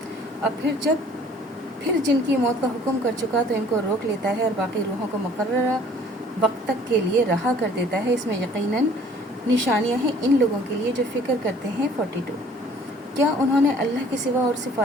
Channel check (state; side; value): normal; both; correlation 0.54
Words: और फिर जिनकी मौत का हुक्म कर चुका तो इनको रोक लेता है और बाकी रूहों को मुकर्ररा वक्त तक के लिए रहा कर देता है। इसमें यकीनन निशानियां हैं इन लोगों के लिए जो फ़िक्र करते हैं। 42 क्या उन्होंने अल्लाह के सिवा और